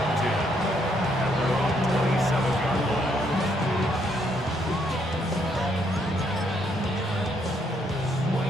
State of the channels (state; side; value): normal; both; correlation 0.72